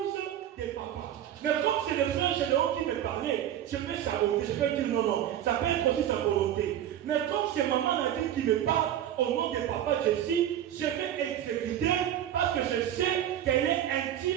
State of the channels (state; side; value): quieter; left; 11.1 dB